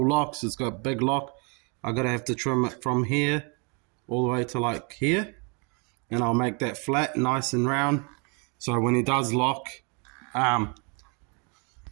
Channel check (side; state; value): left; quieter; 34.2 dB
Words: locks, it's got a big lock, I'm going to have to trim it from here all the way to like here, and I'll make that flat, nice and round, so when he does lock,